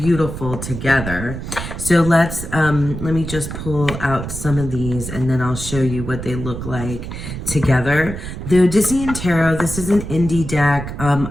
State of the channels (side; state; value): right; noise; rumble, 7 dB below the sound